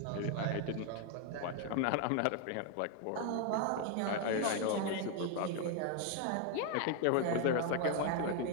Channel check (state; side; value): different; both; correlation 0.01